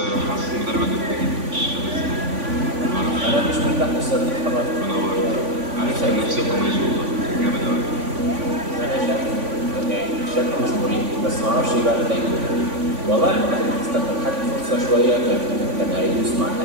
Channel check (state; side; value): late; left; 3.5 ms